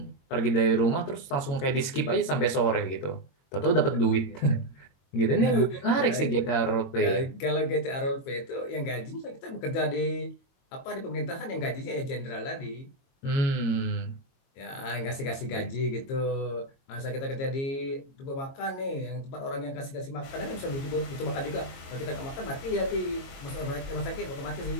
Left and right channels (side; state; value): right; late; 22 ms